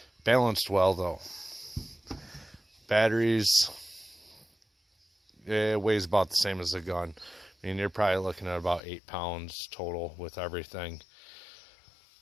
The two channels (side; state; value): right; drops out; at 8.8 s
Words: Balanced well though. Batteries, it weighs about the same as the gun. I mean, you're probably looking at about 8 pounds total with everything.